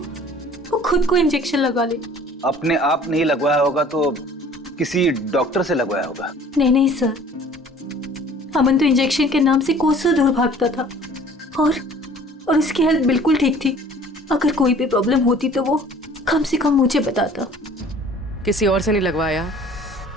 खुद को इंजेक्शन लगा ले। अपने आप नहीं लगवाया होगा तो किसी डॉक्टर से लगवाया होगा। नहीं सर, अमन तो इंजेक्शन के नाम से कोसों दूर भागता था और उसकी हेल्थ बिल्कुल ठीक थी। अगर कोई भी प्रॉब्लम होती तो वो कम से कम मुझे बताता। किसी और से नहीं लगवाया,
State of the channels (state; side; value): normal; both; correlation 0.51